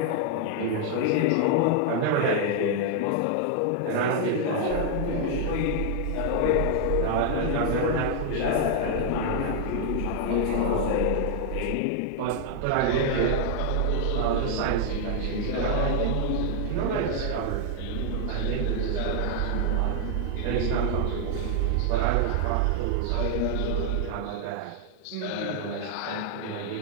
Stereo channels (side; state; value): both; different; correlation 0.00